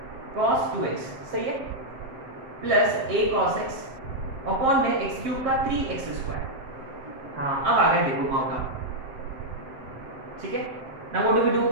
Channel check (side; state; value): left; late; 7.6 ms